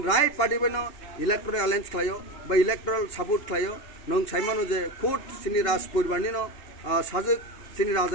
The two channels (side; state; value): right; late; 2.9 ms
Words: राइट पार्टी बेनो इलेक्टोरल अलायन्स खालायो बा इलेक्टोरल सपोर्ट खालायो नों साइमानो जे खुद सिनि राज परिवारनि नो साजक सिनि